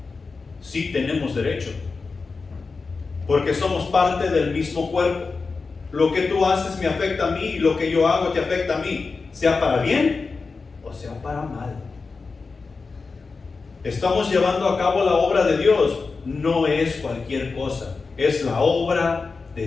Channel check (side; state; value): right; quieter; 4.4 dB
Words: Sí tenemos derecho, porque somos parte del mismo cuerpo. Lo que tú haces me afecta a mí y lo que yo hago te afecta a mí, sea para bien o sea para mal. Estamos llevando a cabo la obra de Dios, no es cualquier cosa, es la obra